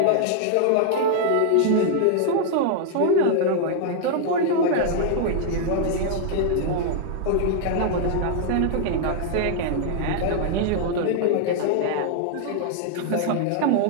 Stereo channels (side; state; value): both; different; correlation -0.01